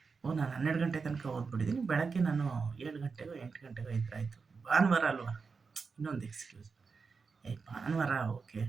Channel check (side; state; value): left; quieter; 5.0 dB